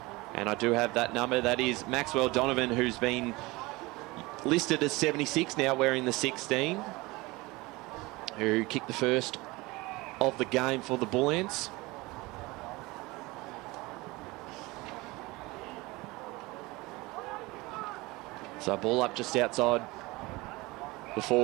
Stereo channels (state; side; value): quieter; left; 22.3 dB